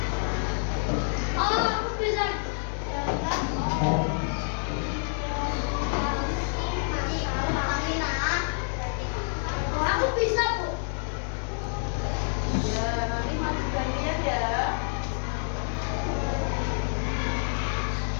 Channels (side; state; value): right; silent; digital silence